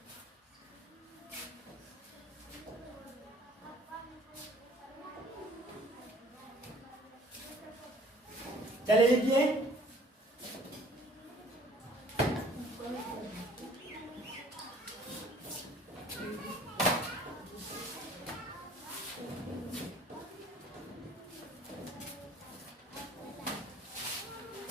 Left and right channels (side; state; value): both; normal; correlation 0.54